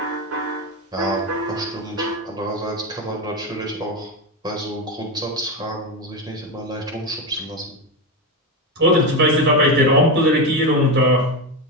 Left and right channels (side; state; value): both; normal; correlation 0.14